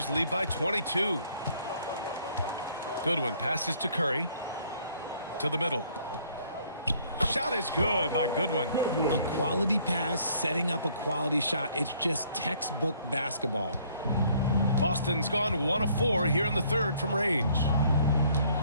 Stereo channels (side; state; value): both; inverted; correlation -0.62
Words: lead by 22. Goodwin passes to Curry. To the middle. Shot is good by Goodwin. A quality pass, setting up a quality shot. It's just textbook basketball. Boston's gone 1 of 4 here in the third from range.